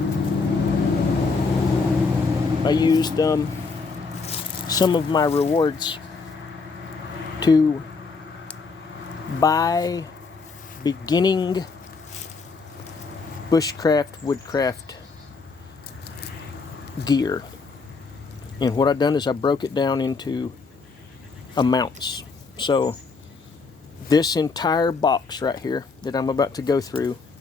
I used some of my rewards to buy beginning bushcraft, woodcraft gear. And what I've done is I broke it down into amounts. So this entire box right here that I'm about to go through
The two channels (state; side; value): quieter; right; 4.4 dB